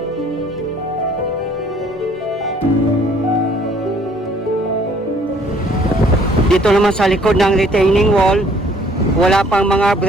dito naman sa likod ng retaining wall, wala pang mga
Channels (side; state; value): both; normal; correlation 0.59